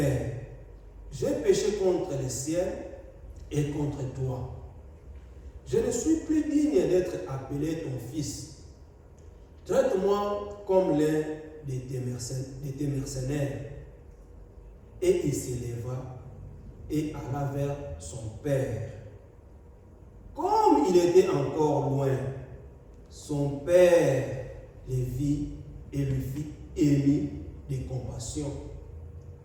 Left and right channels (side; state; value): both; identical; correlation 1.00